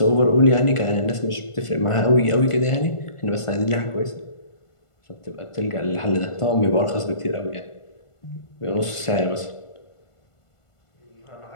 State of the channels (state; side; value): late; right; 1.5 ms